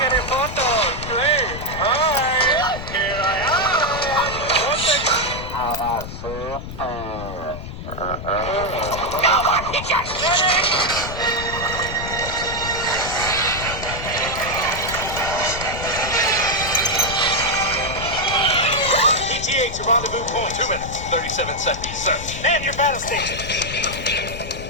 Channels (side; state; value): left; noise; rumble, 9 dB below the sound